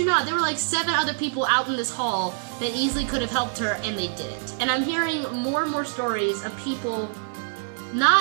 not, there were like 7 other people out in this hall that easily could have helped her, and they didn't. And I'm hearing more and more stories of people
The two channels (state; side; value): silent; left; 62 dB below the other